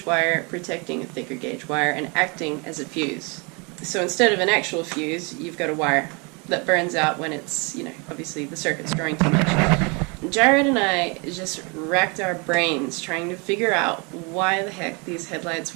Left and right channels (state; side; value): quieter; left; 31.1 dB